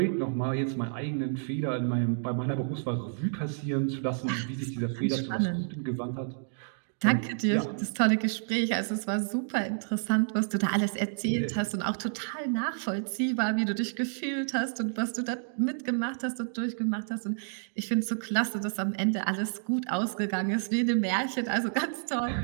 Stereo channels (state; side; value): silent; left; digital silence